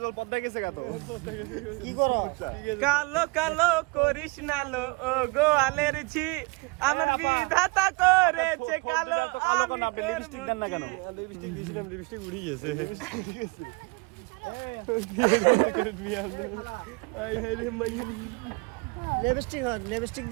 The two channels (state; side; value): quieter; left; 27.3 dB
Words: জল পদ্মায় গেছে কত কি করো কালো কালো করিস না লো ও গোয়ালের ঝি আমার বিধাতা করেছে কালো আমি আপনি লিপস্টিক দেন না কেন লিপস্টিক দিয়েছিলাম লিপস্টিক উড়ে গেছে লিপস্টিক